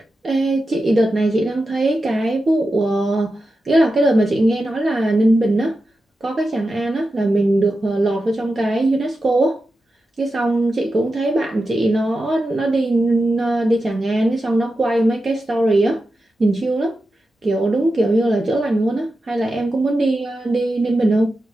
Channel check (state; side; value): normal; both; correlation 0.91